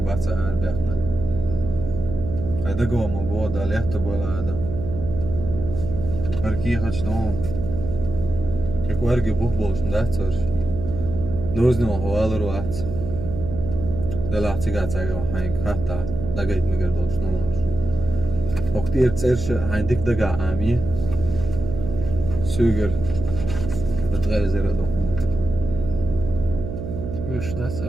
baca arbekna. Hajde gomo voda, lehto bola adam. Arki hač dom. Kako ergi buhbolš ndacor. Doznimo hovalar vat. Dela cigacaga hain hatta. Dagait migar doš nomor. Oktir cerše hain dik daga ami. Suger. Betgele zera dohon. مش داس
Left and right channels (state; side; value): noise; right; hum, 6 dB below the sound